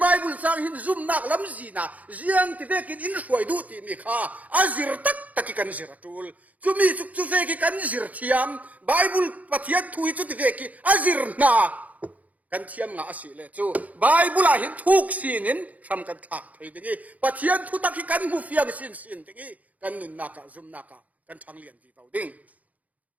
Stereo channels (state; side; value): late; left; 0.074 ms